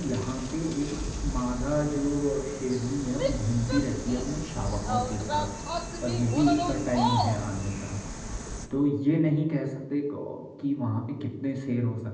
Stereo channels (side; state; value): both; identical; correlation 1.00